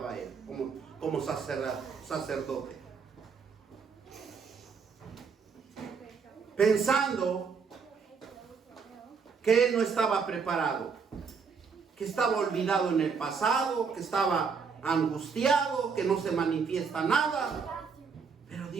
él, como sacerdote. Pensando que él no estaba preparado, que estaba olvidado en el pasado, que estaba angustiado, que no se manifiesta nada. Pero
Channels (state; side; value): quieter; left; 5.7 dB